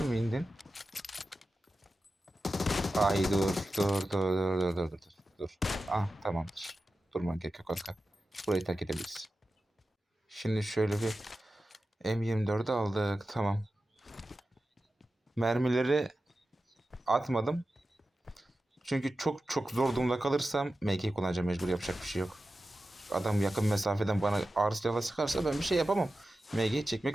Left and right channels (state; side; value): normal; both; correlation 0.93